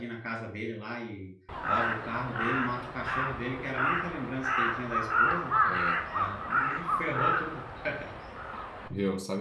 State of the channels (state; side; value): identical; both; correlation 1.00